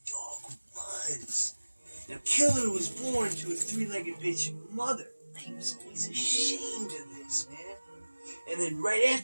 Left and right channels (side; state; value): both; inverted; correlation -1.00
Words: dog was. Now, Killer was born to a three-legged bitch mother. He was always ashamed of this, man. And then right